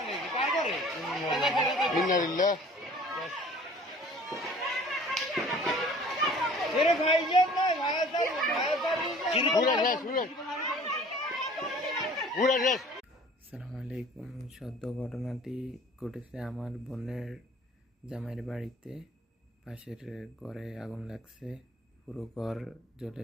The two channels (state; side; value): normal; both; correlation 0.50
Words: আসসালামু আলাইকুম। সদ্য ঘটনাটি ঘটেছে আমার বোনের জামাইয়ের বাড়িতে। পাশের ঘরে আগুন লাগছে, পুরো ঘর